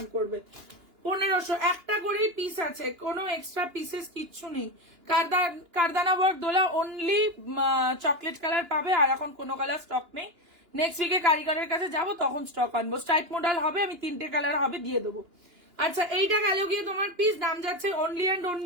করবে। 1500, একটা করেই পিস আছে, কোনো এক্সট্রা পিসেস কিচ্ছু নেই। কারদানা ওয়ার্ক দোলা অনলি চকলেট কালার পাবে, আর এখন কোনো কালার স্টক নেই। নেক্সট উইকে কারিগরের কাছে যাবো, তখন স্টক আনবো। স্ট্রাইপ মডেল হবে, আমি 3টে কালার হবে, দিয়ে দেবো। আচ্ছা এইটা গেল গিয়ে তোমার পিস, দাম যাচ্ছে অনলি অ্যান্ড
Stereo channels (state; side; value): late; left; 2.9 ms